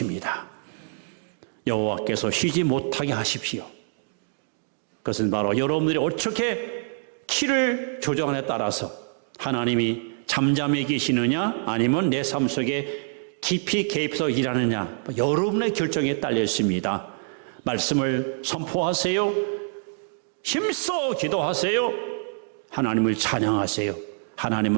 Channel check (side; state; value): left; silent; digital silence